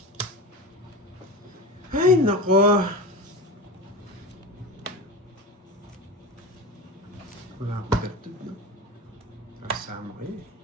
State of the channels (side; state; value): both; normal; correlation 0.27